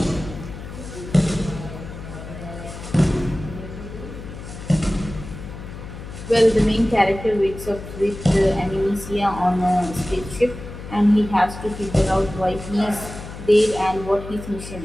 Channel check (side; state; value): left; noise; hum, 12 dB below the sound